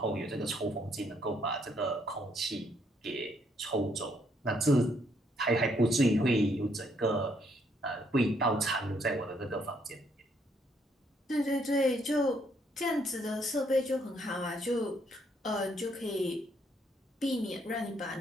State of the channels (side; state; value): both; normal; correlation 0.71